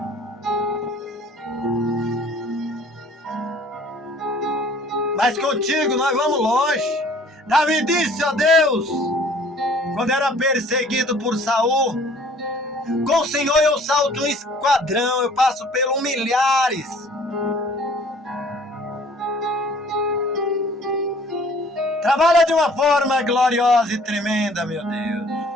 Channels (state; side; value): normal; both; correlation 0.54